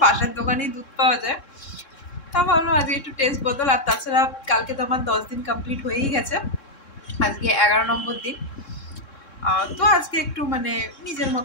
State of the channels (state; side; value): late; right; 3.7 ms